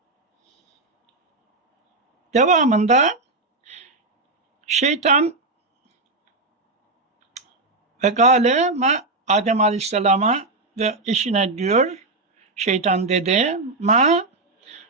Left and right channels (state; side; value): quieter; left; 3.3 dB